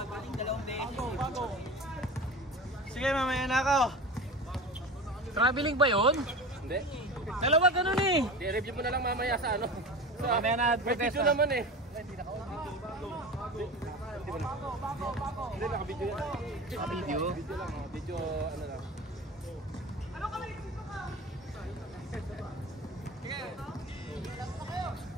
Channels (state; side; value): normal; both; correlation 0.32